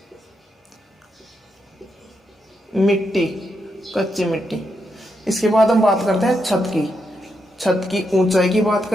मिट्टी, कच्ची मिट्टी। इसके बाद हम बात करते हैं छत की ऊंचाई की बात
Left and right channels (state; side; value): normal; both; correlation 0.82